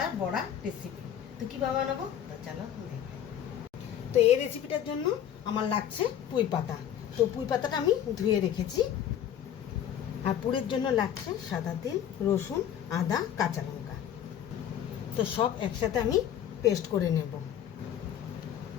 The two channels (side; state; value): right; quieter; 9.9 dB